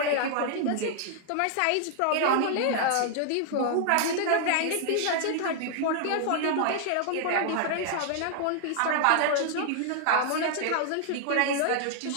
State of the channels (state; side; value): different; both; correlation 0.00